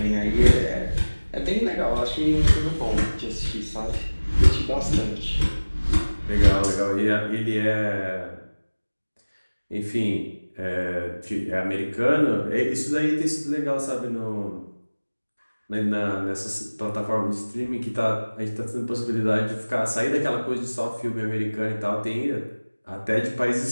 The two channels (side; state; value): both; inverted; correlation -1.00